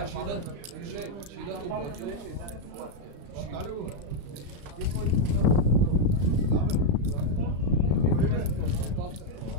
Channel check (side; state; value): left; late; 35 ms